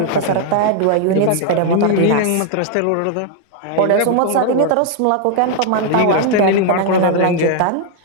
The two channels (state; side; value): different; both; correlation 0.00